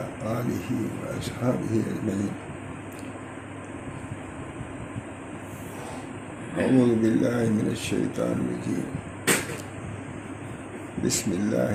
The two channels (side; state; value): both; identical; correlation 1.00